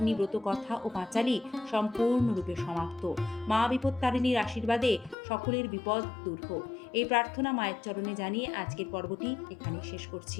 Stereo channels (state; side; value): drops out; right; at 5.2 s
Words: ব্রত কথা ও পাঁচালী সম্পূর্ণরূপে সমাপ্ত। মা বিপত্তারিণীর আশীর্বাদে সকলের বিপদ দূর হোক, এই প্রার্থনা মায়ের চরণে জানিয়ে আজকের পর্বটি এখানে শেষ